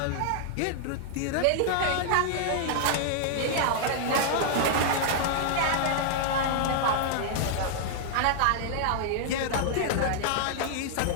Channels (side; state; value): both; different; correlation -0.01